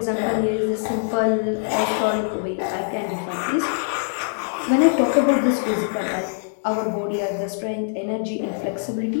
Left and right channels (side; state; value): right; silent; digital silence